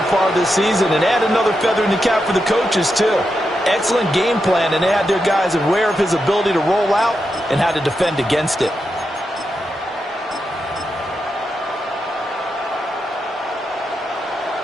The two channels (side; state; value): both; normal; correlation 0.86